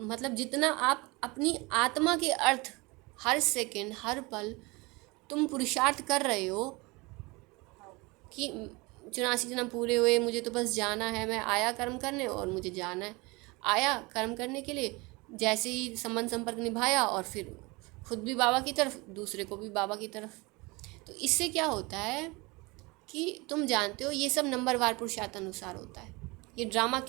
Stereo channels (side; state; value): left; quieter; 25.1 dB